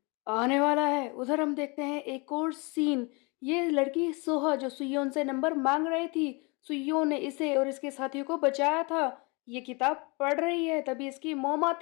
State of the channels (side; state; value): right; quieter; 29.2 dB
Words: आने वाला है। उधर हम देखते हैं एक और सीन। ये लड़की सोहा जो सुयोन से नंबर मांग रही थी, सुयोन ने इसे और इसके साथियों को बचाया था। ये किताब पढ़ रही है, तभी इसकी मॉम